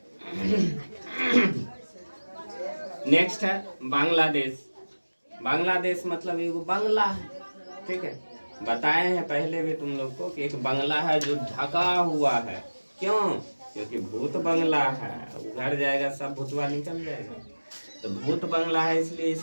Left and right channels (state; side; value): inverted; both; correlation -1.00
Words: नेक्स्ट है बांग्लादेश। बांग्लादेश मतलब एक बंगला है। ठीक है, बताए हैं पहले भी तुम लोग को कि एक बंगला है जो ढका हुआ है। क्यों? क्योंकि भूत बंगला है, उधर जाएगा सब भूतवा निकल जाएगा। तो भूत बंगला है इसलिए